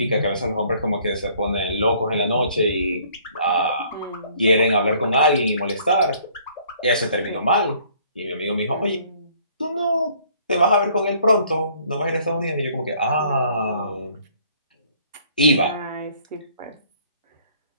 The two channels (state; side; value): inverted; both; correlation -0.59